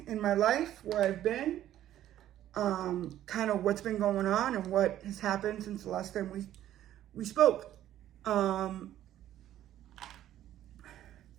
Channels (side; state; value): left; quieter; 12.4 dB